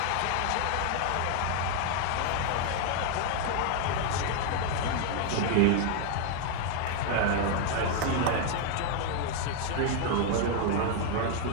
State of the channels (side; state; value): both; different; correlation 0.00